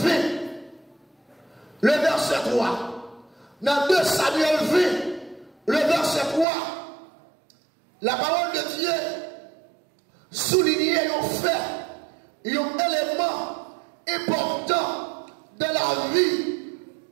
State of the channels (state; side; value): drops out; left; at 6.5 s